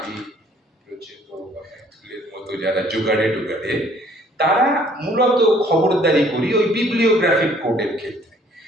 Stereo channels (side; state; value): both; normal; correlation 0.59